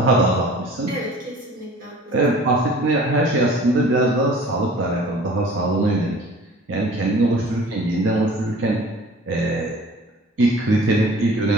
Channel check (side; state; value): both; normal; correlation 0.47